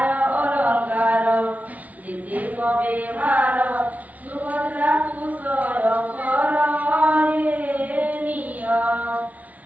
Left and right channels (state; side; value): late; left; 0.072 ms